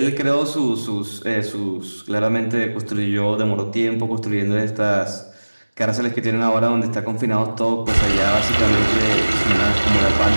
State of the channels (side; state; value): both; inverted; correlation -1.00